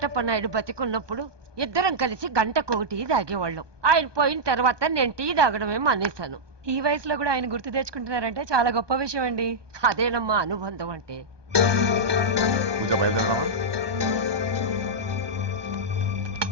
నాయుడు బతికున్నప్పుడు ఇద్దరం కలిసి గంటకొకటి తాగేవాళ్ళం. ఆయన పోయిన తర్వాత నేను టీ తాగడమే మానేశాను. ఈ వయసులో కూడా ఆయన గుర్తు తెచ్చుకుంటున్నారంటే చాలా గొప్ప విషయం అండి. అదేనమ్మా అనుబంధం అంటే. పూజ బయలుదేరదామా?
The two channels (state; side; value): late; left; 1.2 ms